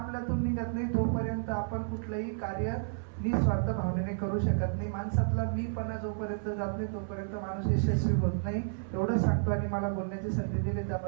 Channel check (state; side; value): silent; left; 56 dB below the other